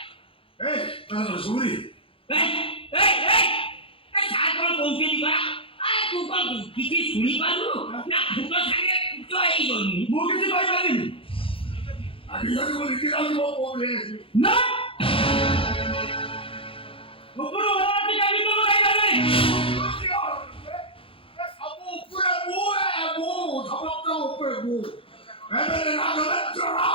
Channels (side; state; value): right; late; 0.26 ms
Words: mana suri? সাত বড় কৌশলী করা আর তুই কল কিছু শুনি পারু না দুটো সাথে তো এই বলবি Mungkin sih baik lagi. Akhirnya aku mikir aku mau boleh. না ওপর ওরা কি গাড়ি তো গাড়ি গাড়ি Kamu perabu, kamu perabu. Emang nak